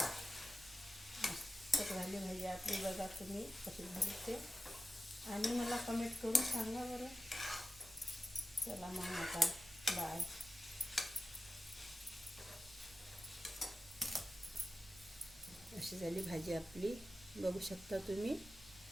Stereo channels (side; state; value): right; noise; rumble, 21 dB below the sound